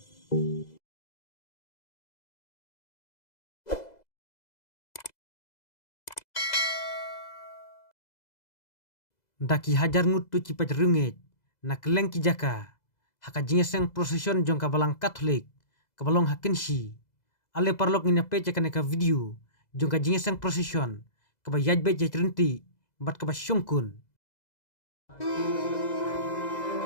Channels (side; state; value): right; late; 2.0 ms